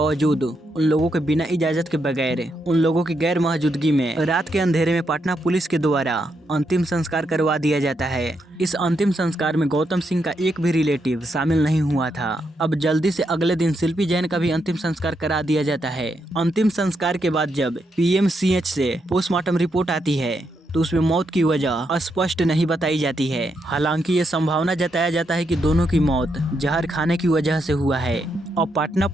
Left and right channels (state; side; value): normal; both; correlation 0.81